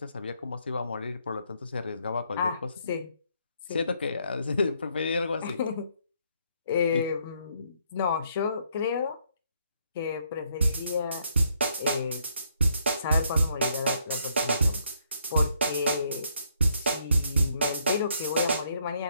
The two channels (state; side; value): inverted; both; correlation -0.71